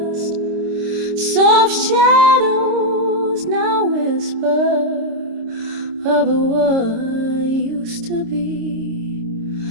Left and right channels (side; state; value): left; late; 26 ms